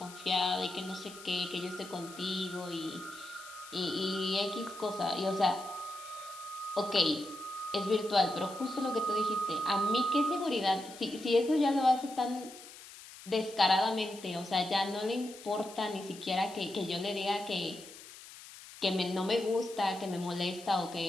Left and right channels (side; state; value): left; noise; hiss, 16 dB below the sound